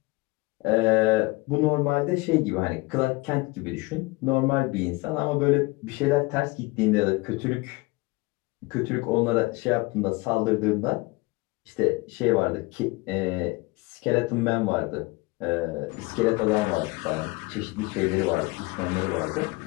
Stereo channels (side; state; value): right; quieter; 23.7 dB